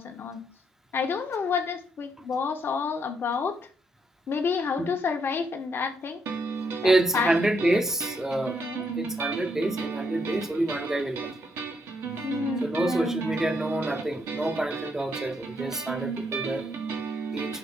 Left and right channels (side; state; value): both; normal; correlation 0.75